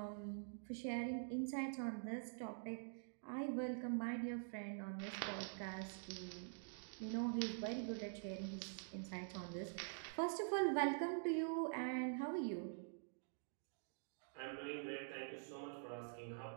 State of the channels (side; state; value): left; silent; digital silence